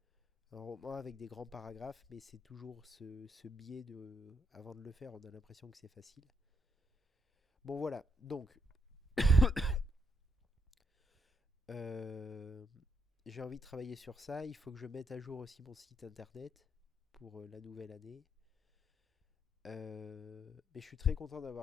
un roman avec des grands paragraphes, mais c'est toujours ce biais de... Avant de le faire, on a l'impression que c'est facile. Bon voilà, donc euh, j'ai envie de travailler sur ça. Il faut que je mette à jour aussi mon site internet pour la nouvelle année. Mais je suis très content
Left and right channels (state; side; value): normal; both; correlation 0.77